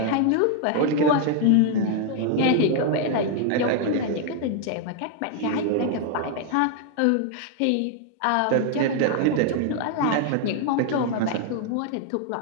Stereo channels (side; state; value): both; different; correlation 0.00